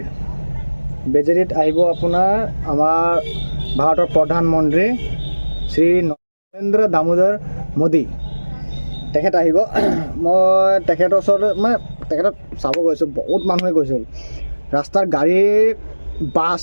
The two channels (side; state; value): both; inverted; correlation -1.00